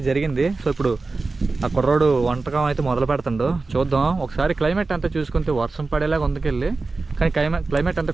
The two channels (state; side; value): quieter; left; 3.8 dB